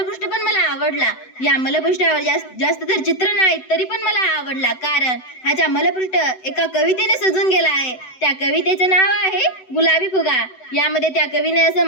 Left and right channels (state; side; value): late; right; 7.9 ms